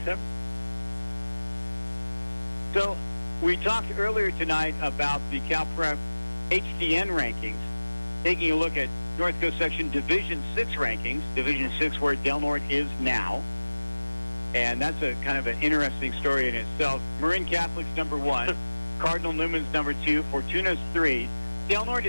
7. So we talked earlier tonight about the CalPrep HDN rankings, taking a look at North Coast Section Division 6 rankings, Division 6 where Del Norte is now. And that's a kind of an interesting story in itself. Marin Catholic's number 1, Cardinal Newman's number 2, Fortuna's 3. Del Norte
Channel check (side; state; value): both; inverted; correlation -1.00